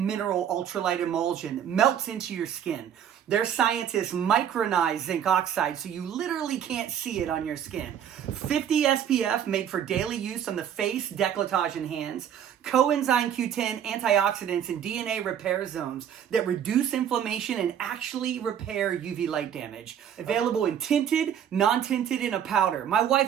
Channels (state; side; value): quieter; left; 9.2 dB